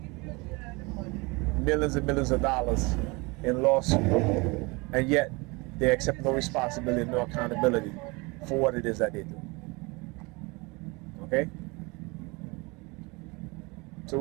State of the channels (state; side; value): quieter; left; 26.6 dB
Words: millions and millions of dollars in lawsuit, and yet they accept no responsibility and no accountability for what it is that they do. Okay? So